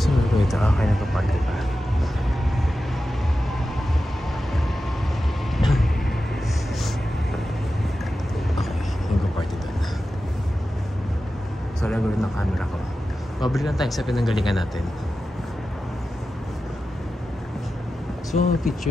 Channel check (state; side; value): normal; both; correlation 0.92